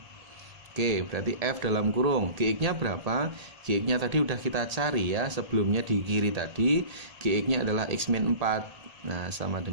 Oke, berarti F dalam kurung Gx-nya berapa? Gx-nya tadi udah kita cari ya, sebelumnya di kiri tadi Gx-nya adalah x min 4. Nah, sama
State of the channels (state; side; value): late; left; 1.8 ms